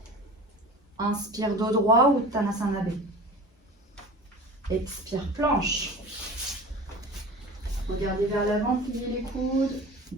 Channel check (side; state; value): both; normal; correlation 0.37